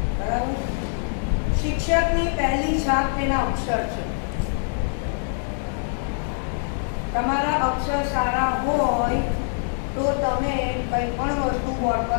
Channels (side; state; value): right; silent; digital silence